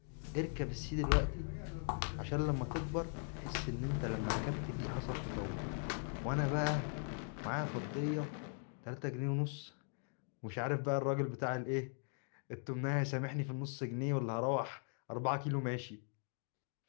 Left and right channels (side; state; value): right; silent; 51 dB below the other